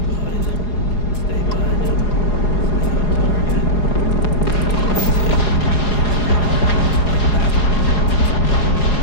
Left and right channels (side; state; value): right; late; 4.8 ms